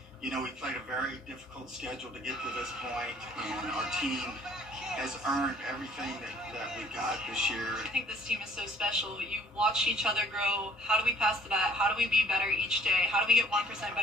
You know, we played a very difficult schedule to get to this point, and our team has earned everything that we got this year. I think this team is so special. You watch each other grow. How do we pass the bat? How do we be better each day? How do we get 1%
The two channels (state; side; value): normal; both; correlation 0.57